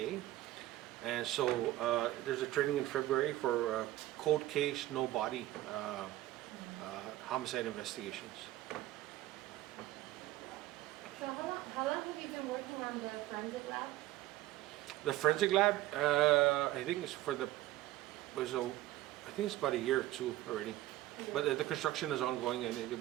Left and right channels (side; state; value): left; quieter; 15.8 dB